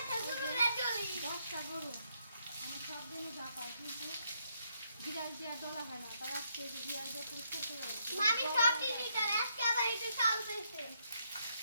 তো গরুরে চলি। 10টা গরু আমি সব দিনই যা পাই, কিন্তু বিড়াল দিয়ে ডলা হয় না, তাই আজকে এই যে বিড়াল দিয়ে পরিষ্কার করে মামি সব দিদিটার আজকে আবার এটা চালতেছে।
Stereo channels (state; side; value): inverted; both; correlation -0.75